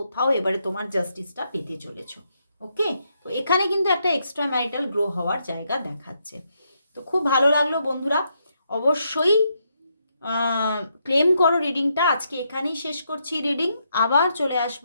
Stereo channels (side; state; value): both; inverted; correlation -0.78